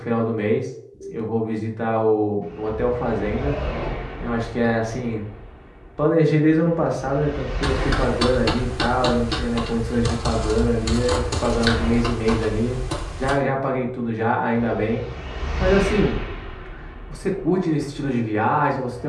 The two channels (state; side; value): identical; both; correlation 1.00